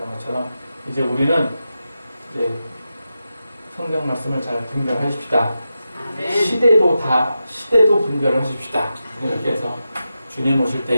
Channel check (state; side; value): inverted; both; correlation -0.90